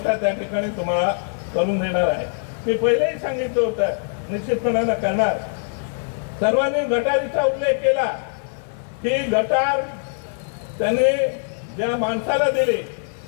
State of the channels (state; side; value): silent; right; 62 dB below the other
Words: त्या ठिकाणी तुम्हाला करून देणार आहे। मी पहिलेही सांगितलं होतं, निश्चितपणानं करणार। सर्वांनी गटारीचा उल्लेख केला की गटार त्याने ज्या माणसाला दिली